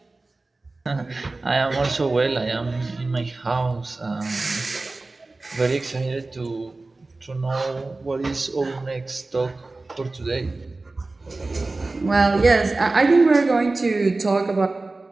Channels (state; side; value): quieter; left; 3.3 dB